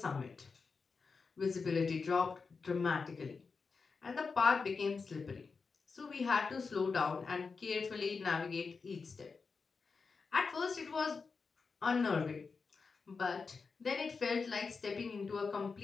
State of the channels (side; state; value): right; quieter; 4.8 dB